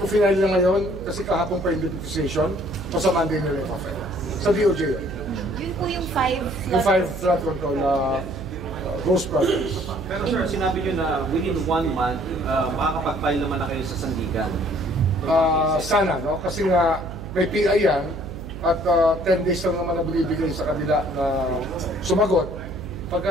final na ngayon kasi kahapon pa yung notification o sa Monday nila yung file. Sa DOJ yun. Yun po yung 5 Yung 5 flood control na ghost projects. Pero sir, sinabi nyo na within 1 month, makakapag-file naman na kayo sa Sandigan. Sana, no? Kasi nga may PI yan at 10 days lang naman na binibigay sa kanila na sumagot.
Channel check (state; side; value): noise; right; hum, 10 dB below the sound